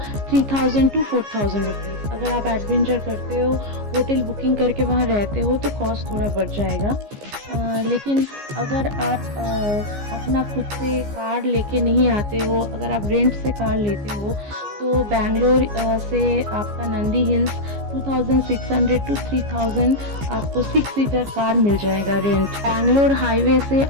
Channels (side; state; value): left; late; 15 ms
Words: 3000 to 4000 रुपीज़। अगर आप एडवेंचर करते हो, होटल बुकिंग करके वहाँ रहते हो, तो कॉस्ट थोड़ा बढ़ जाएगा। लेकिन अगर आप अपना खुद से कार लेके नहीं आते हो, अगर आप रेंट से कार लेते हो, तो बैंगलोर से आपका नंदी हिल्स 2600 to 3000 आपको 6 सीटर कार मिल जाएगा रेंट। बैंगलोर हाईवे से